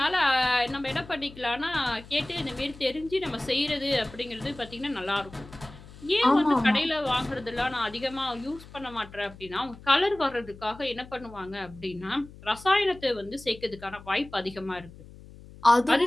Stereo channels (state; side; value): noise; left; hum, 19 dB below the sound